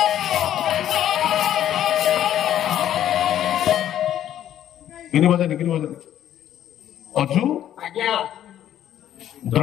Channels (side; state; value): right; quieter; 11.2 dB